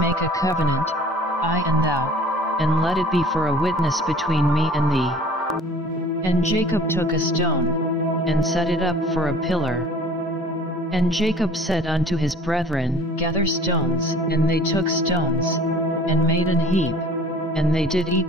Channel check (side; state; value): both; normal; correlation 0.46